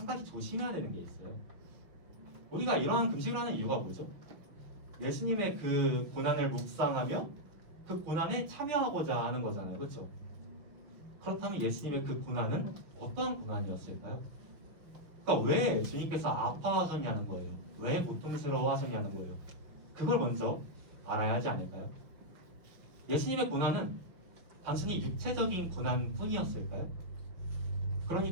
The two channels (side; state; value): left; late; 6.0 ms